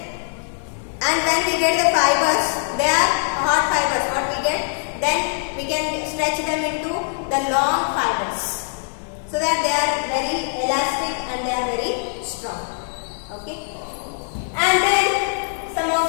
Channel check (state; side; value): silent; right; digital silence